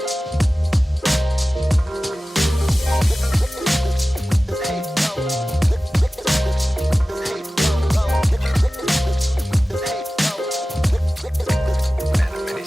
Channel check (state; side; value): normal; both; correlation 0.96